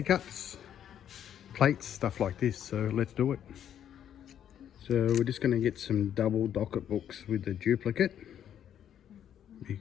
cups, plates, stuff like this. So let's do it. So we're just going to get some double docket books with the duplicate,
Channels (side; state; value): right; quieter; 9.8 dB